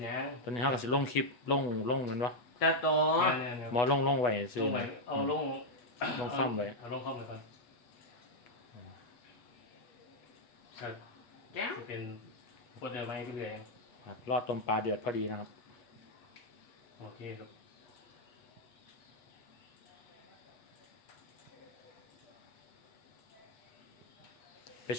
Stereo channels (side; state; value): right; late; 8.2 ms